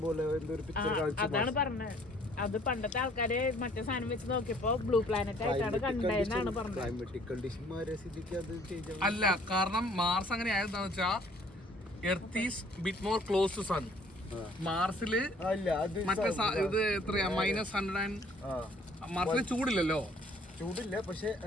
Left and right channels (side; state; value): both; normal; correlation 0.58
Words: പോലെ, എന്തൊരു പിക്ചർ കാണിച്ചു. അതാണ് പറഞ്ഞത്. അത് പണ്ടത്തെ ആൾക്കാര് മറ്റേ സാധനം വെച്ച് നോക്കിയപ്പോ ബ്ലൂ പ്ലാനറ്റ് ആയിട്ടാണ് കണ്ടതെന്നാണ് പറഞ്ഞത്. ക്ലൈമറ്റിക് കണ്ടീഷൻ മാറിയ സ്ഥിതിക്ക് അത് ചേഞ്ച് ആവും. അല്ല, കാരണം മാർസ് അങ്ങനെ ആയതെന്താന്ന് വെച്ചാ earth is bit more close to sun. മാർസില് അല്ല അത് മറ്റേ ഇത് എത്രയാ -100. മാർസിൽ ചൂടില്ലല്ലോ. ചൂടില്ല, പക്ഷെ